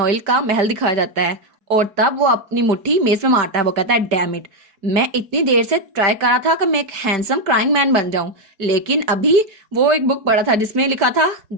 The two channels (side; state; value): left; late; 5.1 ms